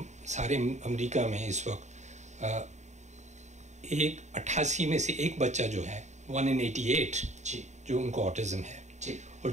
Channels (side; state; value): left; late; 0.34 ms